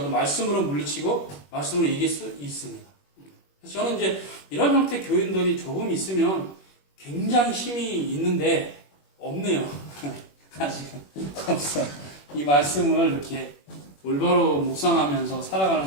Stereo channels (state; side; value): late; right; 21 ms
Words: 말씀으로 물리치고 말씀으로 이길 수 있습니다. 그래서 저는 이제 이런 형태 교인들이 조금 있으면 굉장히 힘이 있는데 없네요. 아직은 없어요. 이 말씀을 이렇게 올바로 묵상하면서 살아가는